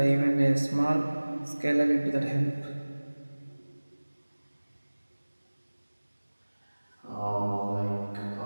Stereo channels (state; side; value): inverted; both; correlation -1.00